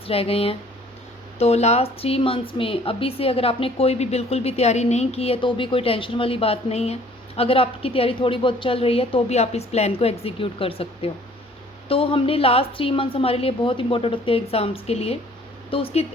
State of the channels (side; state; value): both; normal; correlation 0.55